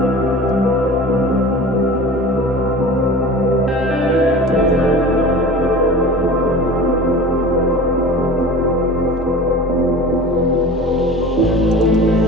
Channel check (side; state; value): both; normal; correlation 0.37